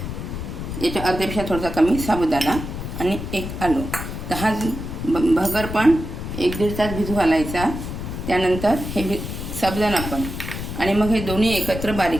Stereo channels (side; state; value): left; noise; rumble, 6 dB below the sound